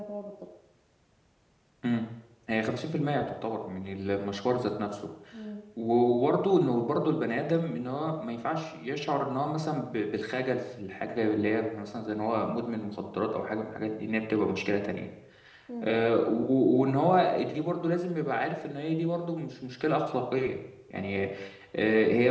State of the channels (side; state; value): both; identical; correlation 1.00